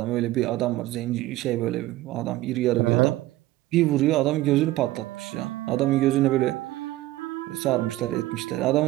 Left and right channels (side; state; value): left; quieter; 16.7 dB